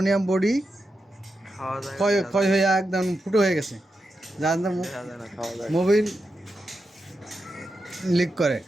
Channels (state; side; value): normal; both; correlation 0.88